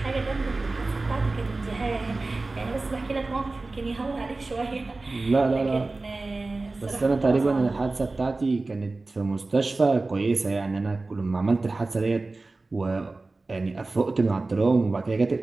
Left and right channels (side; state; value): left; quieter; 3.4 dB